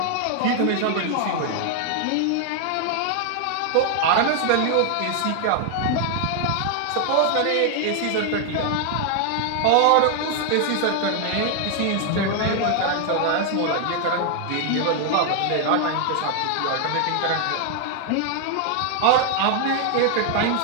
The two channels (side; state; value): both; different; correlation 0.00